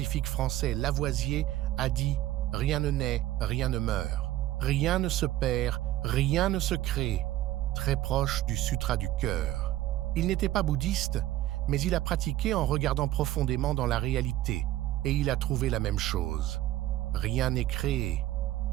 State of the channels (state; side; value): quieter; left; 14.7 dB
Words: français Lavoisier a dit « Rien ne naît, rien ne meurt. Rien ne se perd, rien ne se crée », très proche du Sutra du cœur. Il n'était pas bouddhiste, mais il a pratiqué en regardant profondément dans la réalité, et il a trouvé la même chose. Rien n'est créé,